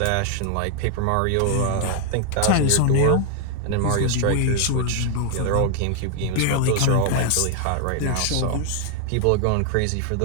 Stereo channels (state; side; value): different; both; correlation 0.00